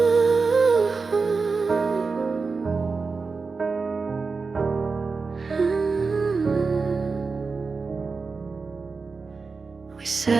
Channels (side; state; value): left; quieter; 4.5 dB